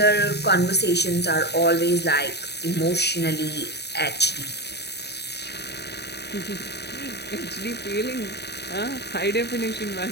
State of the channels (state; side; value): late; right; 0.48 ms